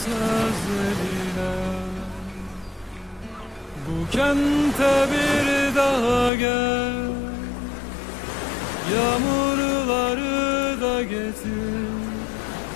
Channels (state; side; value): drops out; right; at 6.3 s